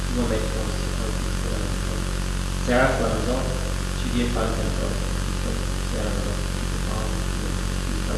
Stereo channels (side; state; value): both; identical; correlation 1.00